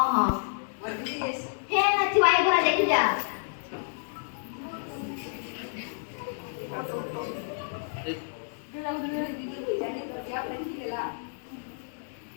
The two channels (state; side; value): silent; right; digital silence